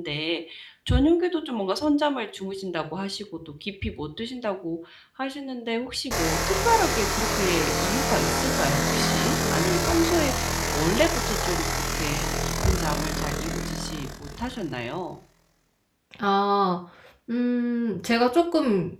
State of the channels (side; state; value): both; identical; correlation 1.00